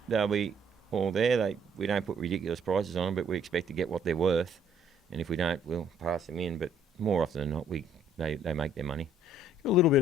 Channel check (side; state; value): both; normal; correlation 0.62